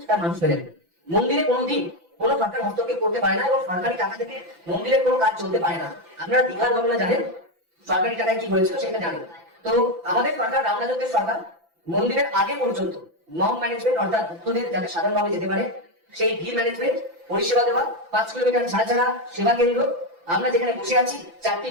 সেটা মানুষ মেনে নেবে। মন্দিরে কোনোদিন কোনো সরকার হস্তক্ষেপ করতে পারে না, এবং সরকারি টাকা থেকে মন্দিরের কোনো কাজ চলতে পারে না। আপনারা দীঘার ঘটনা জানেন, সরকারি টাকায় কি হয়েছিল সেটা জানেন। তো আমাদের সরকার, রামরাজত্বের সরকার, মন্দিরের আগে পর্যন্ত মম ম্যানেজমেন্ট অর্থাৎ ভক্তদের যাতে সাধারণভাবে যেতে পারে সেই ভিড় ম্যানেজমেন্ট, পরিষেবা দেওয়া, 5 কিলোমিটার ছাড়া ছাড়া সেবা কেন্দ্র, আমরা যেখানে বসে আছি 4টি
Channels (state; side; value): late; left; 5.9 ms